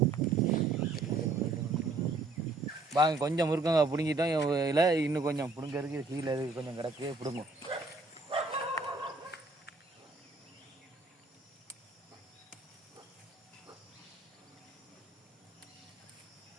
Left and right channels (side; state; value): left; quieter; 3.5 dB